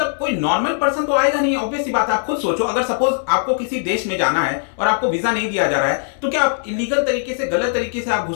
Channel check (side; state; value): right; silent; digital silence